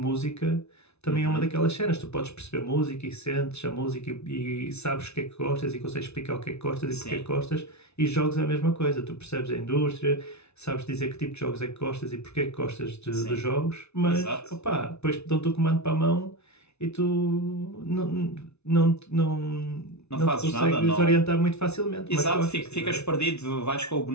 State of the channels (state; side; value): late; right; 0.81 ms